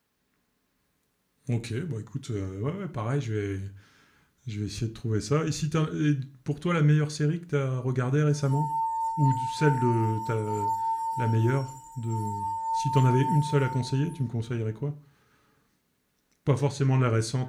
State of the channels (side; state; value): both; identical; correlation 1.00